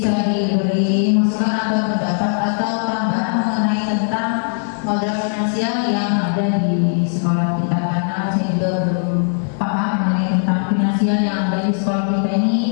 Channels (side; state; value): right; silent; 67 dB below the other